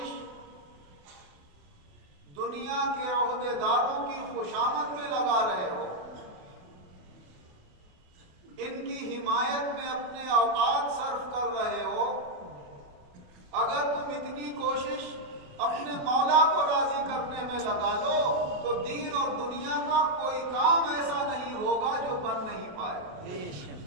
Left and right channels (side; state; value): left; late; 28 ms